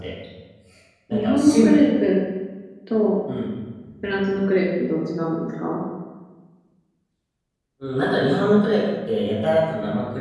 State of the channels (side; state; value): both; identical; correlation 1.00